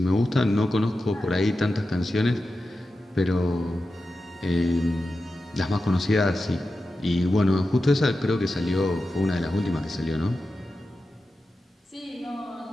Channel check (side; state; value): both; normal; correlation 0.92